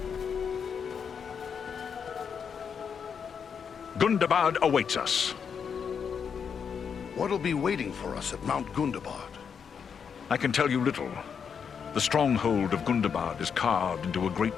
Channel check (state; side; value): quieter; right; 6.8 dB